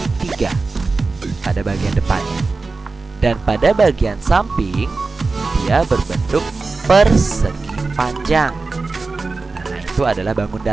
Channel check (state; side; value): quieter; left; 3.9 dB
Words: pada bagian depannya. Dan pada bagian samping dia berbentuk persegi panjang. Nah, itu adalah bangun